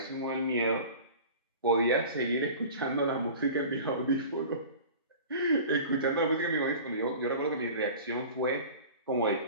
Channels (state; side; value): inverted; both; correlation -0.39